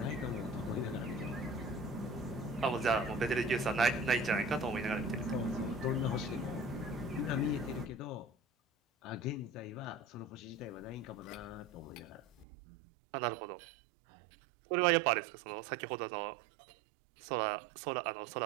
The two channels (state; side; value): drops out; left; at 12.5 s